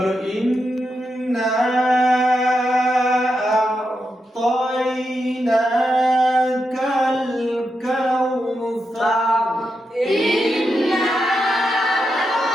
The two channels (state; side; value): normal; both; correlation 0.86